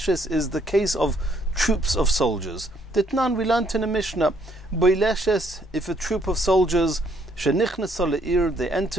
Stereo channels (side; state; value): both; normal; correlation 0.68